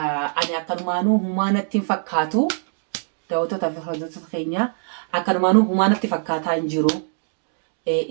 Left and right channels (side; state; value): left; silent; digital silence